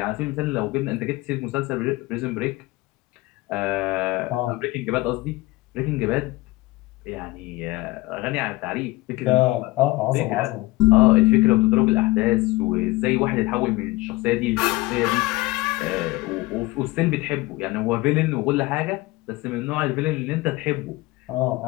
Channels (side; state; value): right; quieter; 20.4 dB